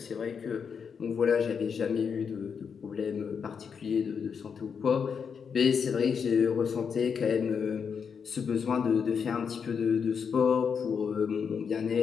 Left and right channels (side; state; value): right; quieter; 6.5 dB